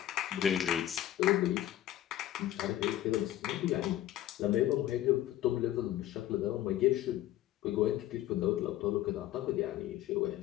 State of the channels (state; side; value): quieter; right; 13.3 dB